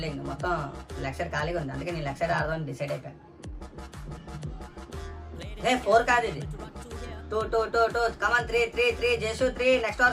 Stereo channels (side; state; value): both; identical; correlation 1.00